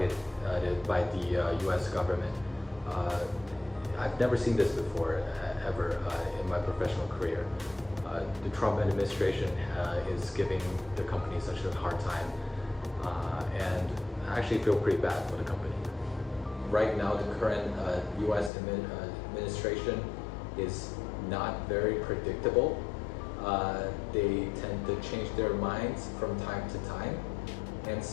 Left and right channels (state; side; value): drops out; right; at 18.5 s